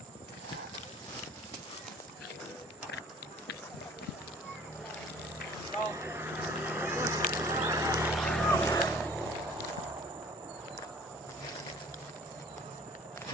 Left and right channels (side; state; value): both; normal; correlation 0.50